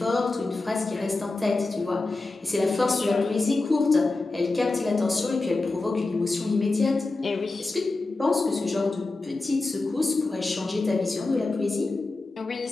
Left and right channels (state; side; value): quieter; right; 3.3 dB